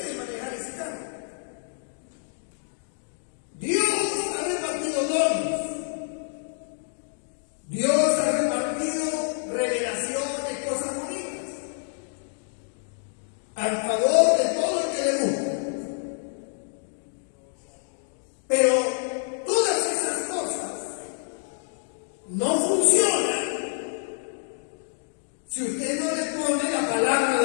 manejar ese carro. Dios ha repartido dones. Dios ha repartido revelaciones, cosas bonitas, al favor de todo el que le gusta. Pero todas esas cosas no funcionan si usted no le pone la palabra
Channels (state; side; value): silent; right; digital silence